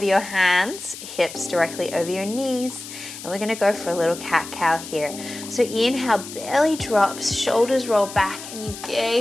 your hands, hips directly over your knees, and we're going to go for a little cat-cow here. So inhale, belly drops, shoulders roll back, and you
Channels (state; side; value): noise; left; hiss, 12 dB below the sound